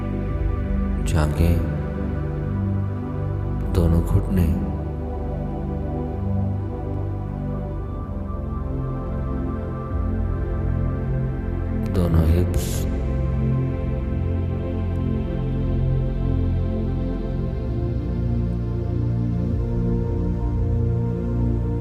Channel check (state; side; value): identical; both; correlation 1.00